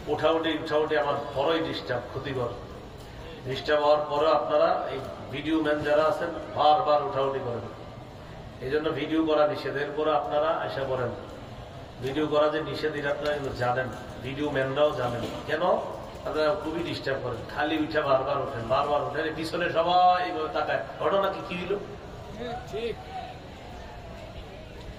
উঠাউটি আমার বড়ই ডিস্টার্ব, ক্ষতিকর। ডিস্টার্ব হওয়ার পরে আপনারা এই ভিডিও ম্যান যারা আছেন বারবার উঠাউটি করেন, এই জন্য ভিডিও করা নিষেধ। এরপরে আপনারা আশা করেন ভিডিও করা যে নিষেধ এটা আপনারা জানেন, ভিডিও ম্যানরাও জানেন। কেন? আপনারা খুবই ডিস্টার্ব করেন, খালি উঠে বারবার ওঠেন, বারবার ওঠেন, পিছনে সবাই তাকায়, ঘটনা কি হইল?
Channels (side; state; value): both; identical; correlation 1.00